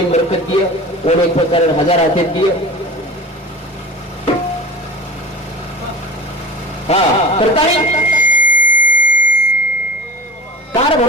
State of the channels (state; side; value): normal; both; correlation 0.39